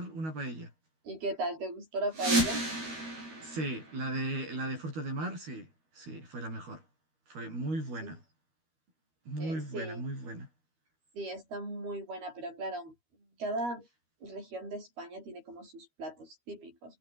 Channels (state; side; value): late; left; 13 ms